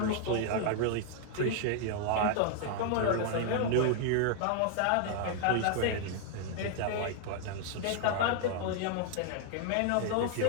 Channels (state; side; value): different; both; correlation 0.00